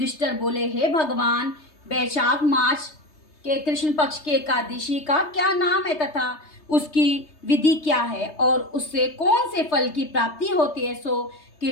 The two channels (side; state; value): right; late; 3.3 ms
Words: बोले, हे भगवान, वैशाख मास के कृष्ण पक्ष के एकादशी का क्या नाम है तथा उसकी विधि क्या है और उससे कौन से फल की प्राप्ति होती है, सो